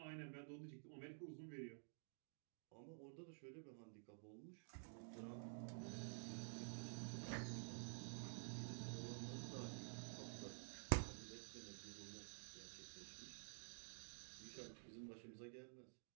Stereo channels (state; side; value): silent; left; digital silence